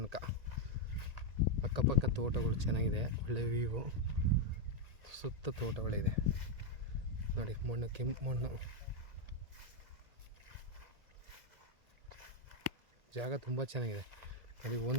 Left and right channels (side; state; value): left; late; 1.8 ms